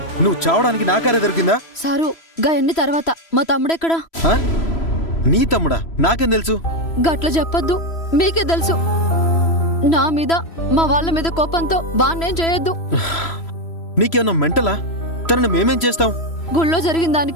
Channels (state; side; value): late; right; 3.0 ms